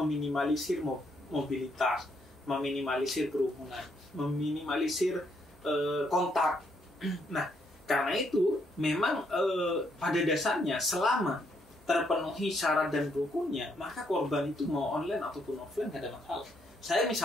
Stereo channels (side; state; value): both; normal; correlation 0.73